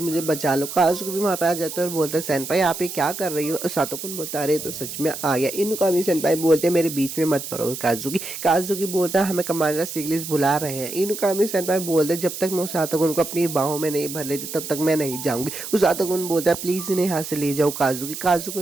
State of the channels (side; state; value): right; noise; hiss, 8 dB below the sound